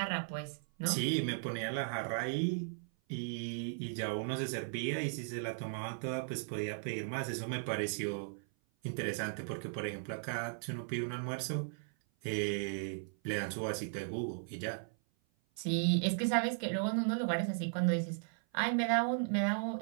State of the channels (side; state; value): left; silent; 53 dB below the other